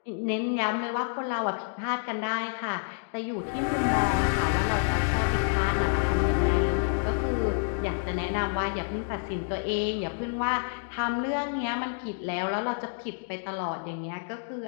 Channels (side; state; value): right; silent; digital silence